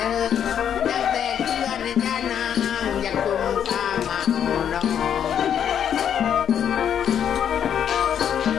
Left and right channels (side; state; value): right; quieter; 8.9 dB